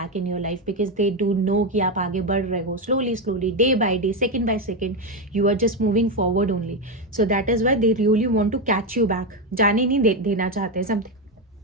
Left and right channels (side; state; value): both; normal; correlation 0.09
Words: in your life, because they do know कि आप आगे बढ़ रहे हो slowly slowly, day by day, second by second, you are just moving forward only. So that is why they really want to catch you back, जाने नहीं देना चाहते